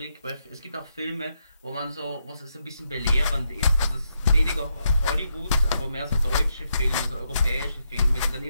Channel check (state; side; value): inverted; both; correlation -0.81